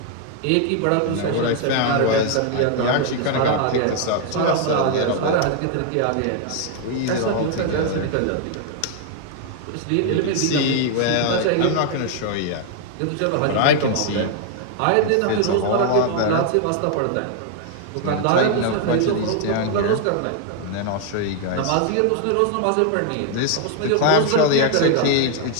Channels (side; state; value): both; different; correlation 0.00